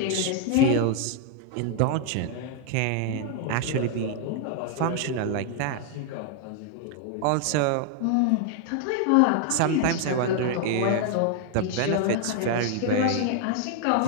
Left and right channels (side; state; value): both; different; correlation 0.00